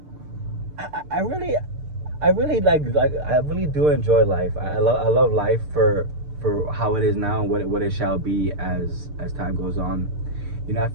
I really I really do enjoy life. I love life for how it is now and what it shall be as time goes on. You know, I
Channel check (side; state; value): left; late; 6.7 ms